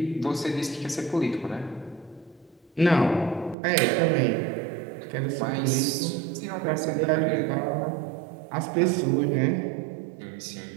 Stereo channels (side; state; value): left; drops out; at 3.6 s